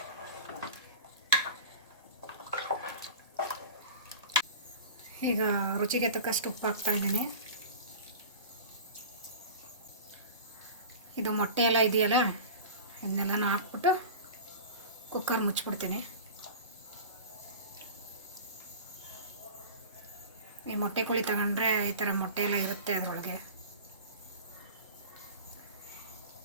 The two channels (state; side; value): inverted; both; correlation -0.34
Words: ಈಗ ರುಚಿಗೆ ತಕ್ಕಷ್ಟು ಉಪ್ಪು ಹಾಕ್ತಾಯಿದ್ದೀನಿ. ಇದು ಮೊಟ್ಟೆ ಎಲ್ಲ ಇದೆಯಲ್ಲ ಇದನ್ನೆಲ್ಲನೂ ಹಾಕ್ಬಿಟ್ಟು ಕುಕ್ಕರ್ ಮುಚ್ಚಿಬಿಡ್ತೀನಿ. ಈ ಮೊಟ್ಟೆ ಕೋಳಿ ತಗೊಂಡ್ರೆ ಈ ಥರ ಮೊಟ್ಟೆ ಎಲ್ಲ ಇರುತ್ತೆ ಅದರೊಳಗೆ.